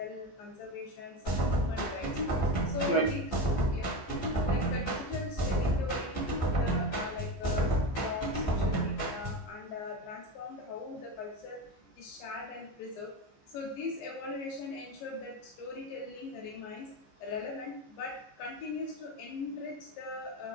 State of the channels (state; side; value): late; right; 14 ms